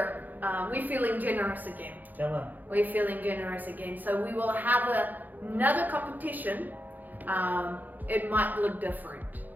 we're feeling generous again. Come on. We're feeling generous again. So we will have another competition. It might look different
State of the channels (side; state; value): left; late; 0.084 ms